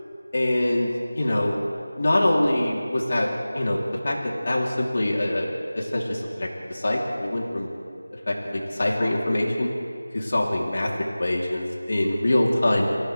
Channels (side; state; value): both; inverted; correlation -0.98